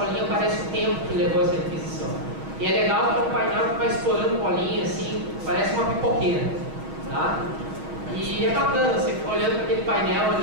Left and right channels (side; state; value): left; late; 6.4 ms